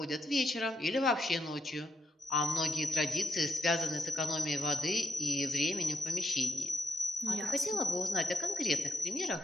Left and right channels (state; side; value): normal; both; correlation 0.82